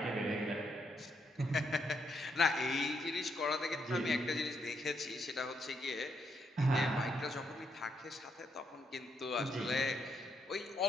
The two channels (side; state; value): both; normal; correlation 0.77